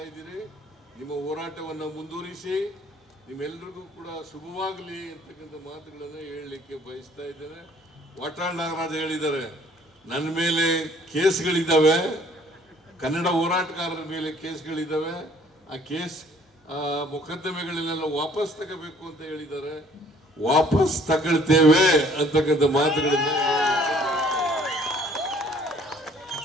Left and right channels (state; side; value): normal; both; correlation 0.58